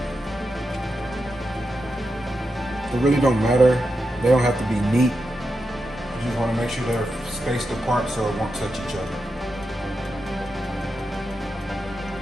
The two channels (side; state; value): both; normal; correlation 0.87